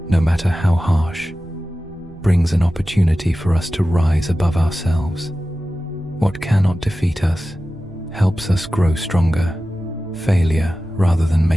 no matter how harsh, brings an opportunity for us to rise above ourselves. What cannot defeat us helps us grow stronger. Failure, rather than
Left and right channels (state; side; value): noise; right; rumble, 22 dB below the sound